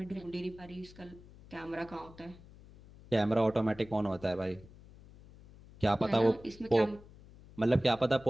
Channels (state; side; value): noise; left; hum, 21 dB below the sound